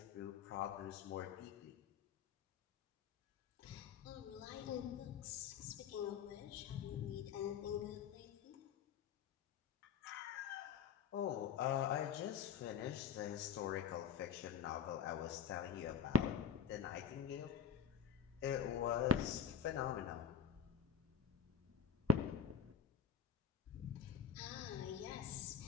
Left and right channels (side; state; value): right; quieter; 6.7 dB